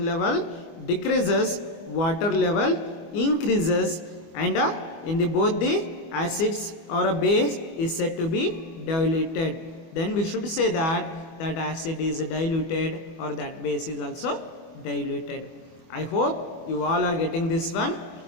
level decreases, water level increases, and in the both the acids or a base is said to be diluted. Then we should say that that acid is diluted or that base is also diluted. I hope you all are getting this one.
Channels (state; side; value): late; right; 25 ms